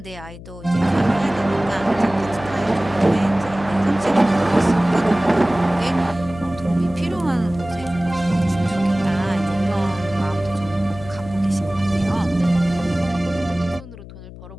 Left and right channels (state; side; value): noise; left; hum, 15 dB below the sound